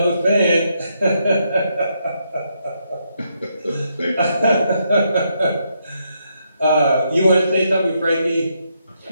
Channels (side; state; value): both; inverted; correlation -0.78